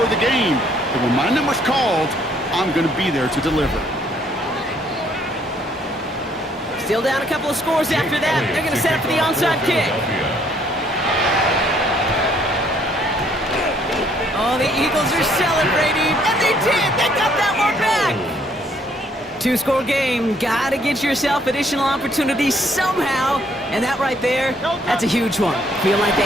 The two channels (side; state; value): both; normal; correlation 0.65